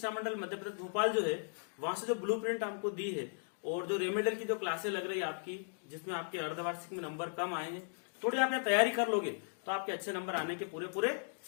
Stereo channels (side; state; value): right; silent; digital silence